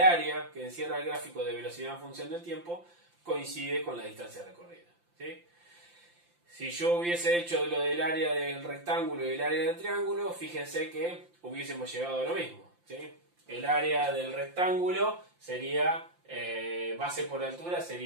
que encierra el gráfico de velocidad en función del tiempo coincide con la distancia recorrida, ¿sí? Si yo hubiese hecho lo del área del rectángulo y el área del triángulo, fíjense que hubiésemos llegado a lo mismo, ¿sí? El área del rectángulo sería, base por altura,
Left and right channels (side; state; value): left; late; 5.8 ms